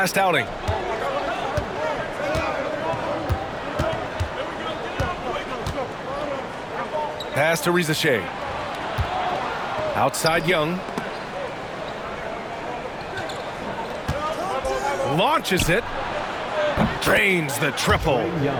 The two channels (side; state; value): both; identical; correlation 1.00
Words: outing. Pass to Rizachet. Outside Young. Launches it. Drains the triple.